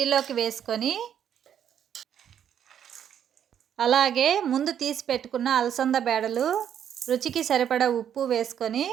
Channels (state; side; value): quieter; left; 9.2 dB